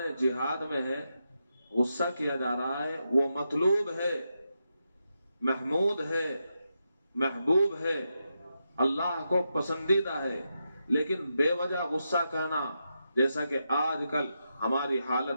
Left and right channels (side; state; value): both; inverted; correlation -0.86